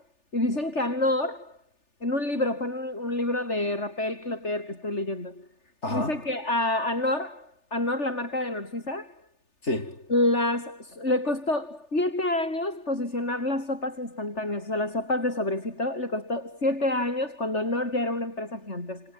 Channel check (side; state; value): right; late; 3.4 ms